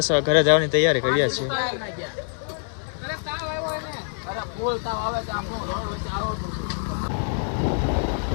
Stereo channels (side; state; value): right; silent; 56 dB below the other